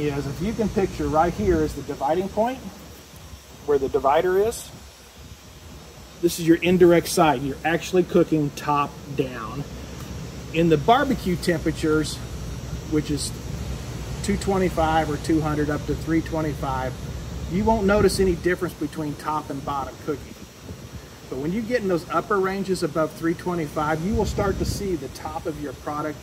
if you can picture right here is the dividing point, where the divider is. This is your indirect side. You're actually cooking top down. In the barbecue temperatures, which is 225 or 200 up to 325, you won't notice any difference between top and bottom cooking. But when you get in those upper ranges above 325, you will start to see the top of your product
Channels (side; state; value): both; identical; correlation 1.00